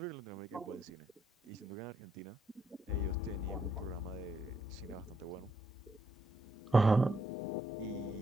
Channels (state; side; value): normal; both; correlation 0.75